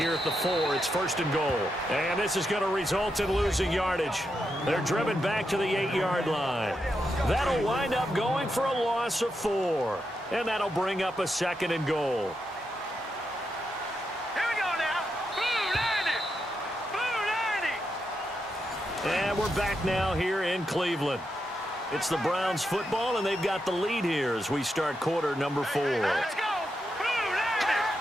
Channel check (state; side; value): normal; both; correlation 0.85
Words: at the 4. It's first and goal. And this is going to result in losing yardage. They're driven back to the 8-yard line. That'll wind up going for a loss of 4. And that'll bring up a second and goal. Here we go now. Boo, And we're back now here in Cleveland. It's the Browns football, and they've got the lead here as we start quarter number 4. let's go.